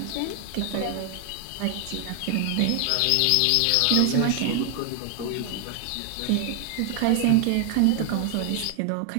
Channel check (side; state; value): both; different; correlation 0.00